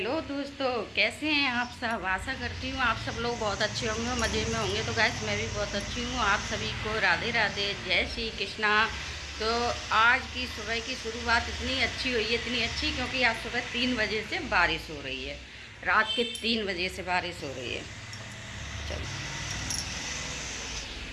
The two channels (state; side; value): identical; both; correlation 1.00